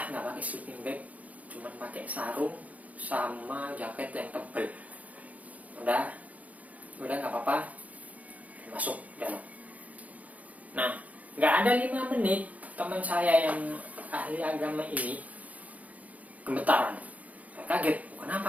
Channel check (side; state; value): left; late; 0.072 ms